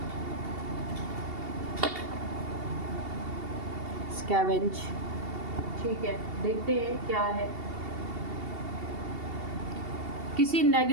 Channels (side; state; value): left; late; 2.7 ms